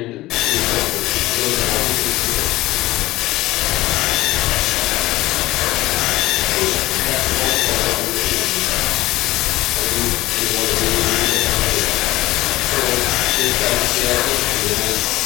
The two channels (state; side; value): quieter; right; 17.8 dB